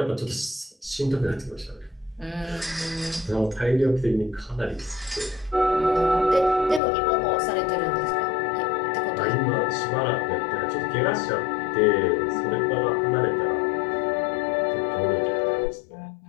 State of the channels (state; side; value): drops out; right; at 6.8 s